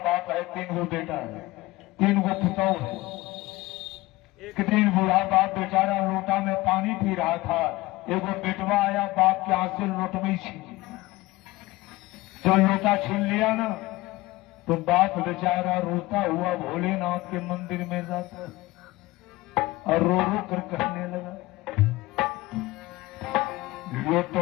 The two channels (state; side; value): quieter; right; 19.4 dB